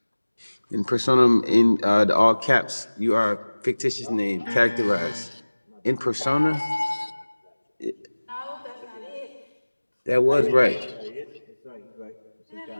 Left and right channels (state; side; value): inverted; both; correlation -1.00